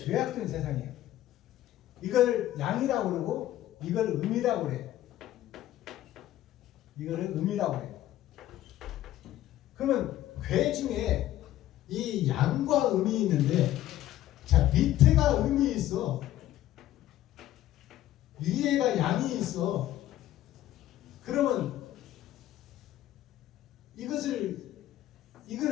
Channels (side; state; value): right; quieter; 13.6 dB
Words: 세상이에요. 이걸 양이라고 그러고 이걸 음이라고 그래요. 이거를 음이라고 그래요. 그러면 괴 중에 이 양과 음이 있는데 자 밑에가 음이 있어. 위에가 양이 있어. 그러면